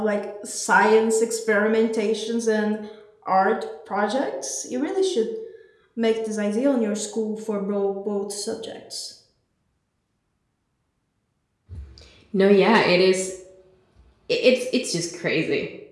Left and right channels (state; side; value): identical; both; correlation 1.00